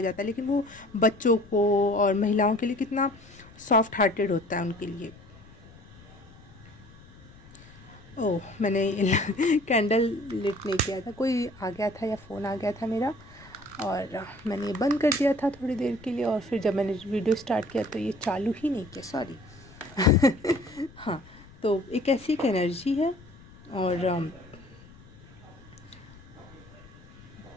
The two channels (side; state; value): left; noise; rumble, 22 dB below the sound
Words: जाता है, लेकिन वो बच्चों को और महिलाओं के लिए कितना सॉफ्ट हार्टेड होता है उनके लिए। ओह, मैंने कैंडल लिट नहीं किया था, कोई आ गया था या फ़ोन आ गया था मेरा, और मैंने बंद कर दिया था थोड़ी देर के लिए, और फिर जब मैंने वीडियो स्टार्ट किया तो ये चालू ही नहीं किया, सॉरी। हाँ, तो एक ऐसी एक एनर्जी है, और